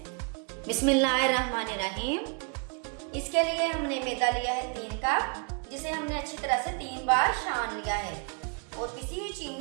बिस्मिल्लाहिर्रहमानिर्रहीम। इसके लिए हमने मैदा लिया है 3 कप, जिसे हमने अच्छी तरह से 3 बार छान लिया है। और पिसी हुई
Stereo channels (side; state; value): left; quieter; 35.7 dB